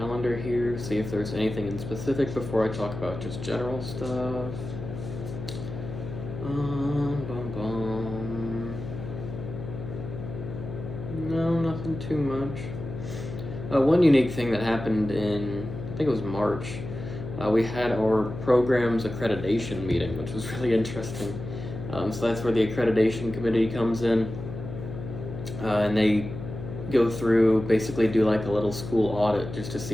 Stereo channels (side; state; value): left; noise; hum, 8 dB below the sound